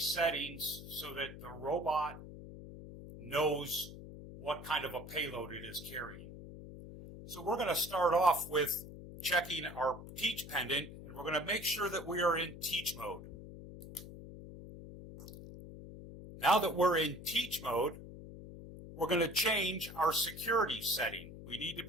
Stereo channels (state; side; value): noise; left; hum, 13 dB below the sound